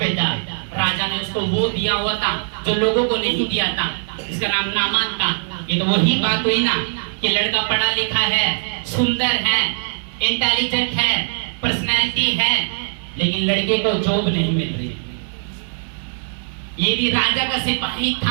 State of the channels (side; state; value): left; silent; 64 dB below the other